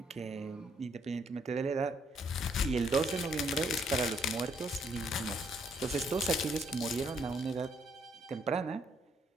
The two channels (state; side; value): normal; both; correlation 0.70